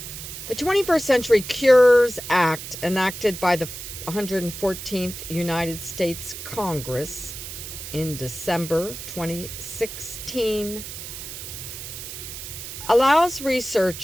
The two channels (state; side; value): noise; right; hiss, 10 dB below the sound